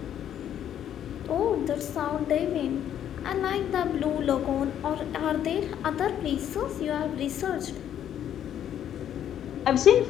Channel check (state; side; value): quieter; right; 10.2 dB